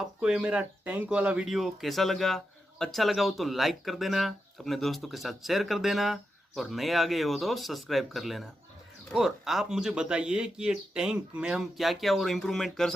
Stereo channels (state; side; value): normal; both; correlation 0.87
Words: ये मेरा टैंक वाला वीडियो कैसा लगा? अच्छा लगा हो तो लाइक कर देना, अपने दोस्तों के साथ शेयर कर देना और नए आ गए हो तो सब्सक्राइब कर लेना। और आप मुझे बताइए कि ये टैंक में हम क्या क्या और इम्प्रूवमेंट कर